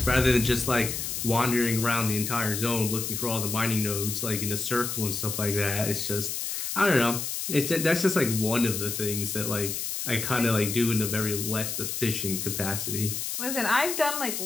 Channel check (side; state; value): left; noise; hiss, 3 dB below the sound